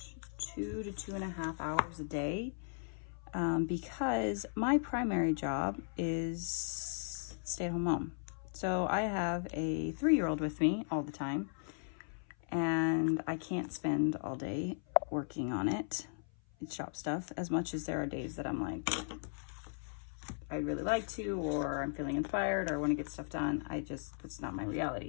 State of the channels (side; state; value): right; silent; 53 dB below the other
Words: 2 to 2.5 hours a day, because my primary job is stay-at-home mom. So I have a 3-year-old with me all the time, and I can't spend all day working on it. It's shop stuff, as much as there are days that I'm like, I'd really like to, or I'm feeling inspired, or I want to get stuff done. It's not my